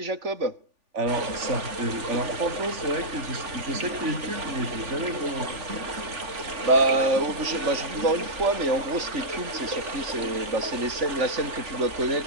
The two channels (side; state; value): left; late; 3.5 ms